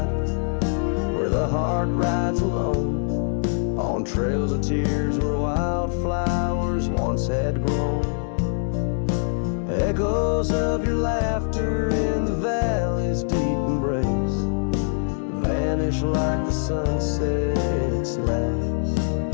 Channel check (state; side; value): silent; right; digital silence